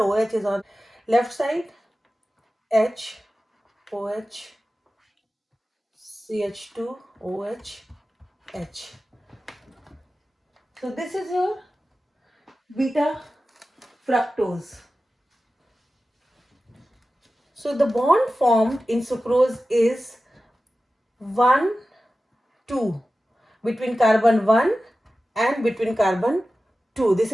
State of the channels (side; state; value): both; normal; correlation 0.94